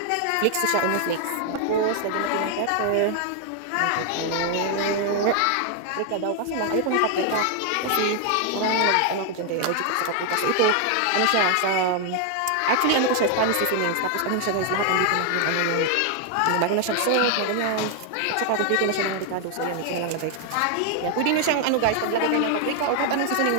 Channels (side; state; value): both; different; correlation 0.00